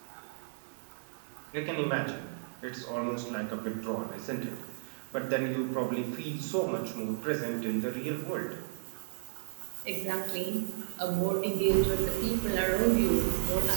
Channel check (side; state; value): left; silent; digital silence